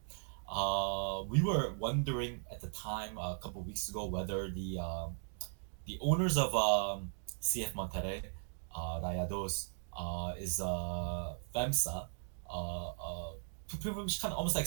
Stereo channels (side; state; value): left; silent; digital silence